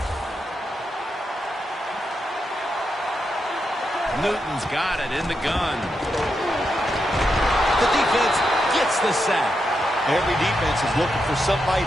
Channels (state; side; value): normal; both; correlation 0.85